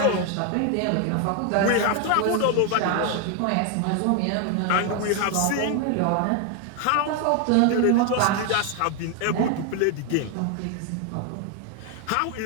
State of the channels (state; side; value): different; both; correlation 0.01